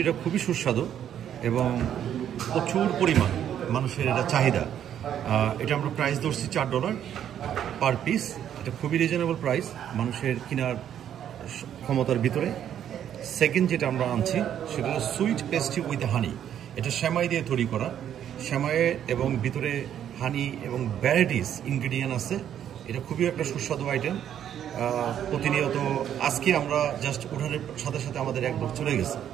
খুবই সুস্বাদু এবং প্রচুর পরিমাণ মানুষের এটা চাহিদা। এটা আমরা প্রাইস ধরছি $4 পার পিস। এটা খুবই রিজনেবল প্রাইস, মানুষের কেনার ক্ষমতার ভিতরে। সেকেন্ড যেটা আমরা আনছি সেটা হলো সুইট পেস্ট্রি উইথ হানি। এটা সেমাই দিয়ে তৈরি করা, সেমাইয়ে এবং ভিতরে হানি এবং ভ্যারাইটিস ইনগ্রিডিয়েন্ট আছে। এটা খুবই একটা সুস্বাদু আইটেম। প্রতিনিয়ত আজকে আমরা জাস্ট ওঠানোর সাথে সাথে আমাদের এক বক্স চলে গেছে,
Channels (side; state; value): left; quieter; 10.0 dB